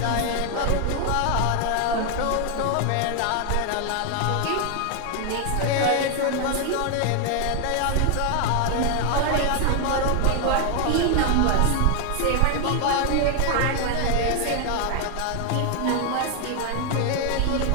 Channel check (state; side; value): different; both; correlation 0.00